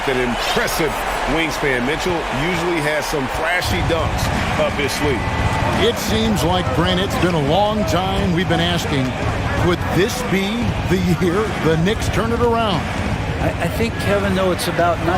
an impressive wingspan. Mitchell usually has some flashy dunks up his sleeve. It seems like, Brent, it's been a long time we've been asking, could this be the year the Knicks turn it around? I think, Kevin, though, it's about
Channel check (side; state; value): both; identical; correlation 1.00